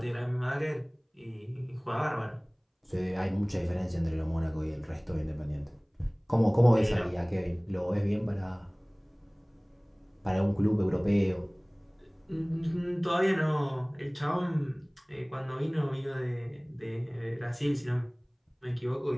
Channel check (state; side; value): identical; both; correlation 1.00